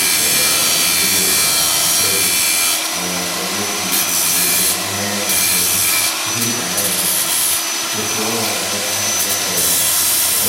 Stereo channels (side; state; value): both; identical; correlation 1.00